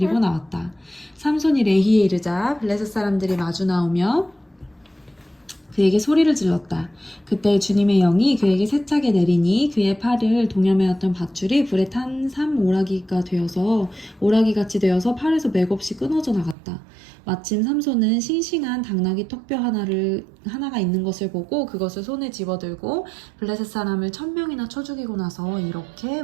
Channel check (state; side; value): drops out; left; at 16.6 s